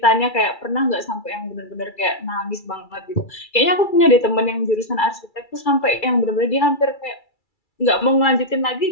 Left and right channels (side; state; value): right; late; 2.3 ms